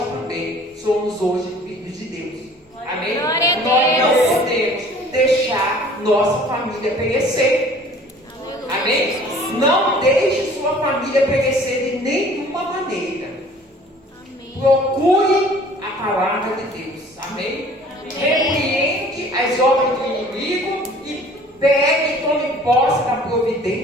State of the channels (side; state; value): both; normal; correlation 0.51